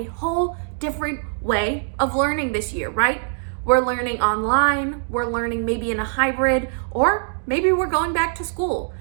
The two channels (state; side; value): silent; left; digital silence